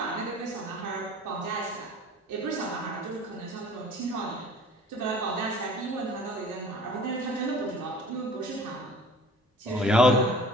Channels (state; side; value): normal; both; correlation 0.47